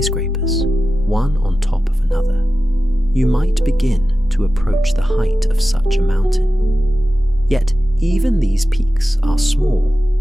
one on top of another, you might begin to approach the height of such a mountain. Yet even these peaks are small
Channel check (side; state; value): both; normal; correlation 0.93